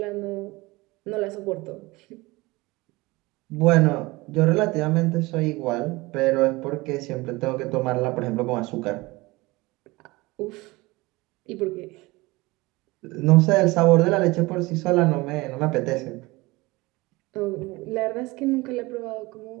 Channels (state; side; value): quieter; left; 22.2 dB